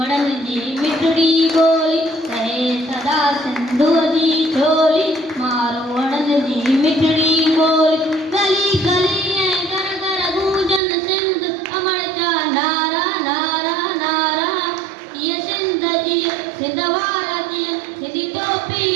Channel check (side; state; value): left; drops out; at 10.8 s